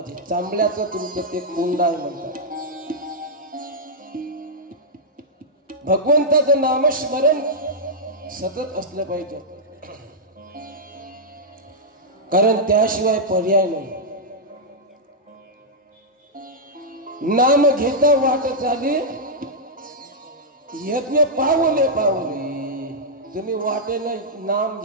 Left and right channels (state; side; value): normal; both; correlation -0.08